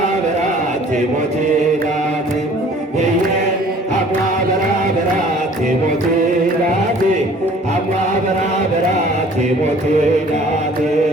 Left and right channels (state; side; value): normal; both; correlation 0.52